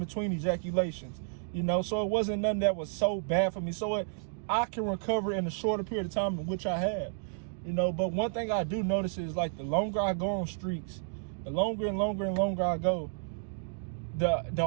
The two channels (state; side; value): silent; left; digital silence